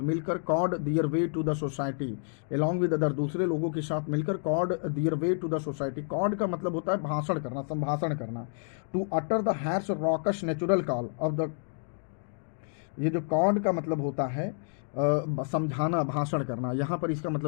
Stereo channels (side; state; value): right; silent; digital silence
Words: मिलकर carved their way to the society, along with other, दूसरे लोगों के साथ मिलकर carved their way to the society। carved का मतलब होता है भाषण करना, संभाषण करना। to utter the harsh raucous natural call of the, ये जो कॉर्ड का मतलब होता है समझाना, भाषण करना, यहाँ पर इसका